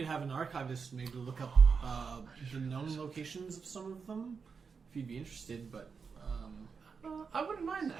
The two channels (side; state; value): left; quieter; 5.5 dB